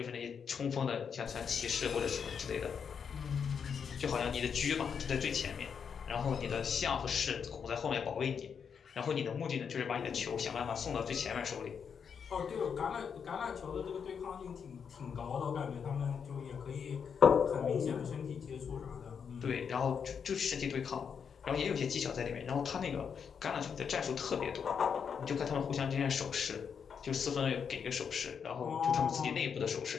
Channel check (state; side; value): quieter; right; 6.8 dB